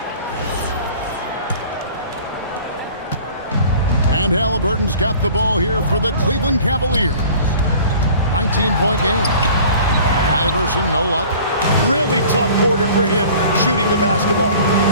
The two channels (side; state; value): both; inverted; correlation -0.47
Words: And Halliburton's got the ball here for the Cleveland Cavaliers. 19-point game. Iverson, no luck. Really tough quarter for him shooting the basketball.